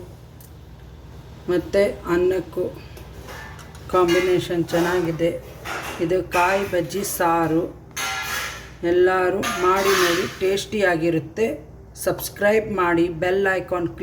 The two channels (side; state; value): both; identical; correlation 1.00